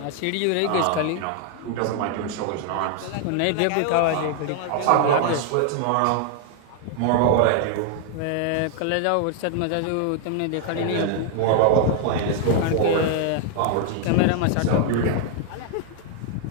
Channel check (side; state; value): both; different; correlation 0.00